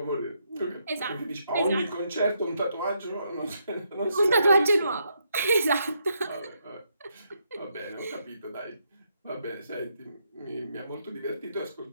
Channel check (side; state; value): both; inverted; correlation -0.77